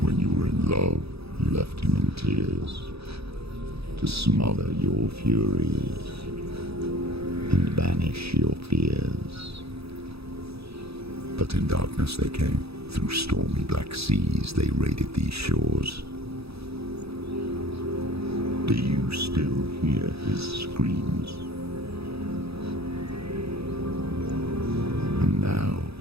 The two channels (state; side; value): late; left; 0.78 ms